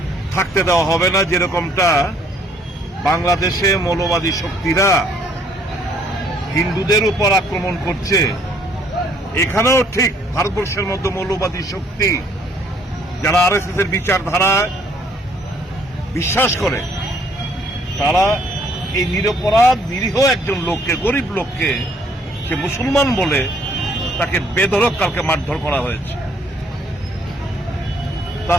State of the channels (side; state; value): both; normal; correlation 0.64